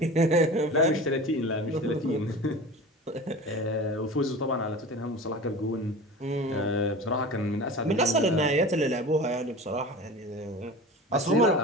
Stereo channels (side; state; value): both; normal; correlation 0.35